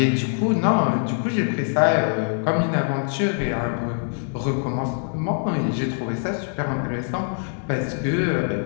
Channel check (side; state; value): right; silent; 60 dB below the other